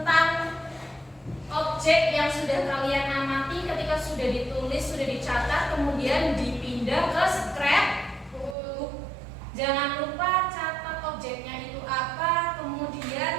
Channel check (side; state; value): left; drops out; at 8.6 s